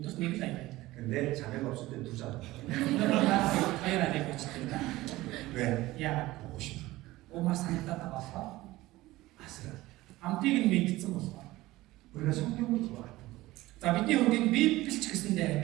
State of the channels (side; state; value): left; quieter; 18.1 dB